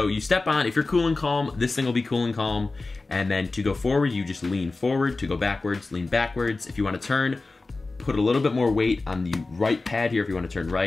you step on, if you're cool and calm, this thing will be cool and calm, and then to go forward, you just lean forward. To go backwards, lean backwards. If you want to turn, put a little bit more weight on the right pad here. If you want to turn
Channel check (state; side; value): quieter; right; 3.5 dB